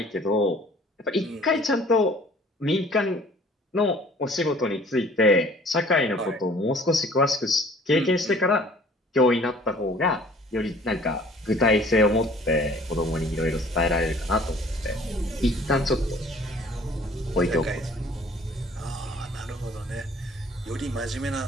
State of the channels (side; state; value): both; normal; correlation 0.53